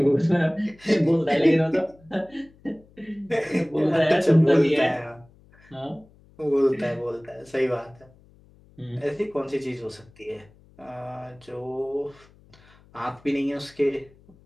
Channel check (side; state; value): left; noise; hum, 28 dB below the sound